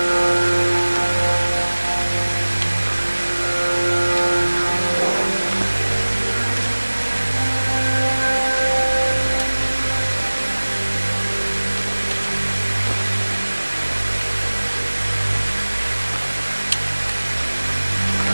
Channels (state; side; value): inverted; both; correlation -1.00